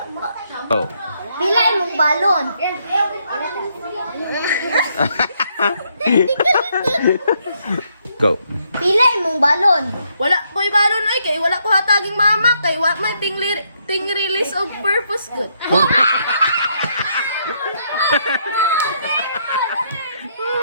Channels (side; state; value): both; inverted; correlation -0.74